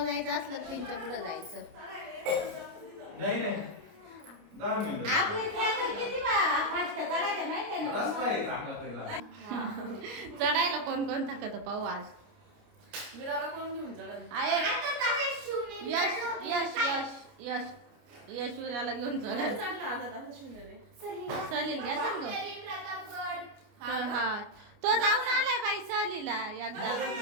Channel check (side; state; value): left; late; 29 ms